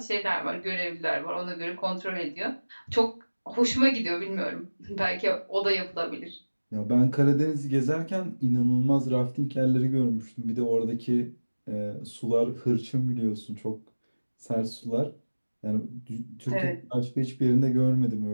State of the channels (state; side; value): inverted; both; correlation -1.00